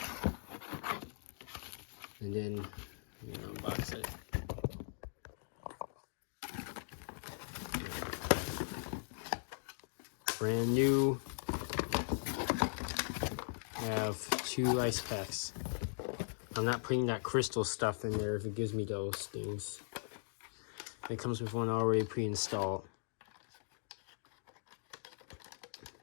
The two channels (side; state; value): right; silent; digital silence